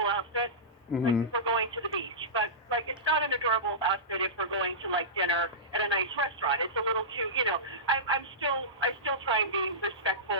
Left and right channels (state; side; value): normal; both; correlation -0.17